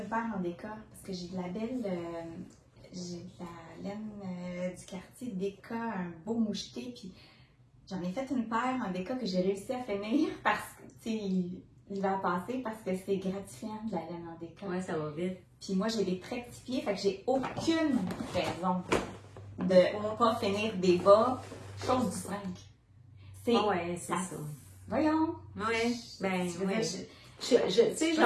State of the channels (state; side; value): identical; both; correlation 1.00